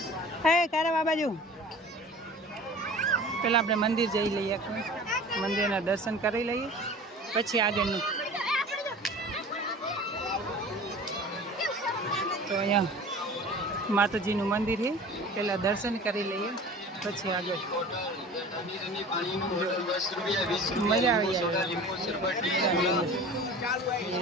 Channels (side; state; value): both; normal; correlation 0.41